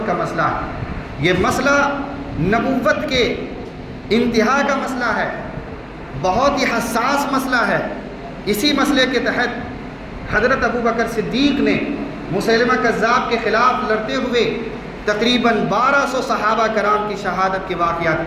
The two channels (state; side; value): identical; both; correlation 1.00